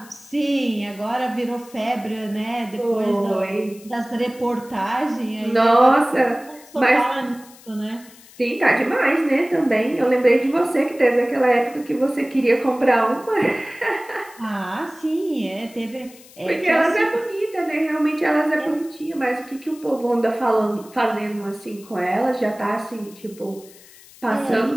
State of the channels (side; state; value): left; noise; hiss, 23 dB below the sound